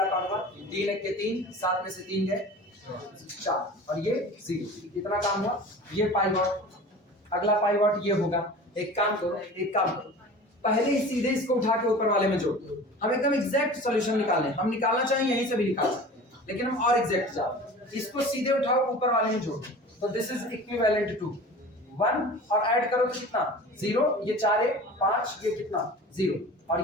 काम हुआ, 3 1 के 3, 7 में से 3 गए 4, और ये 0। कितना काम हुआ, ये पाइवॉट। अगला पाइवॉट ये होगा, एक काम करो, पहले ही सीधे इसको उठा के ऊपर वाले में जोड़ दो। हम एकदम एग्जैक्ट सॉल्यूशन निकालें, हम निकालना चाहें यहीं से भी निकाल सकते हैं, लेकिन हम और एग्जैक्ट जाते, इसको सीधे उठाओ ऊपर वाले में जोड़ दो, तो दिस इज इक्विवेलेंट टू 1, और ऐड करो तो कितना 0, ये 4 है 5, ये कितना 0,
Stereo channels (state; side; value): normal; both; correlation 0.38